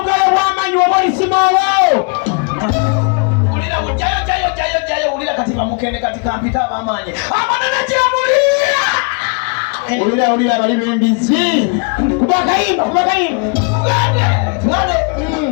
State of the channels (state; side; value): quieter; right; 36.6 dB